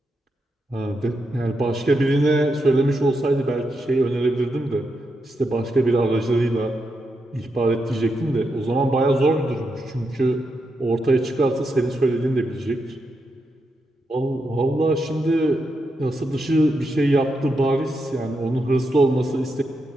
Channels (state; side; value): normal; both; correlation 0.84